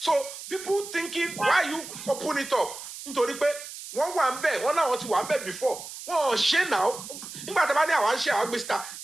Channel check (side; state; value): right; noise; hiss, 11 dB below the sound